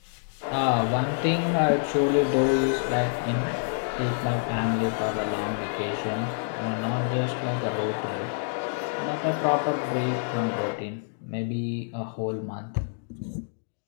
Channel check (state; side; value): silent; right; digital silence